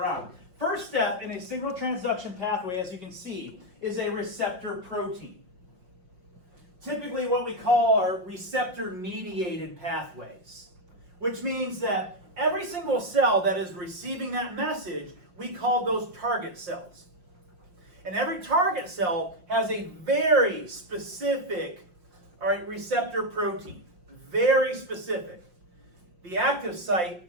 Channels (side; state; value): left; late; 5.6 ms